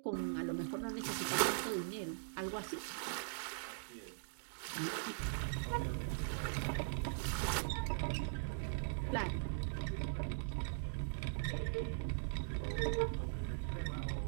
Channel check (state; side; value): silent; left; digital silence